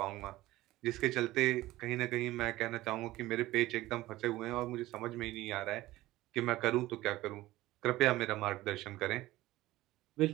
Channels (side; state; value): left; quieter; 17.2 dB